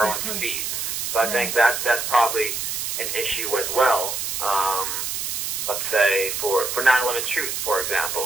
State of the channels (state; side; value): noise; right; hiss, 2 dB below the sound